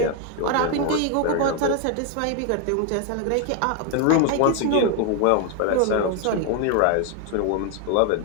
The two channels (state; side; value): different; both; correlation 0.01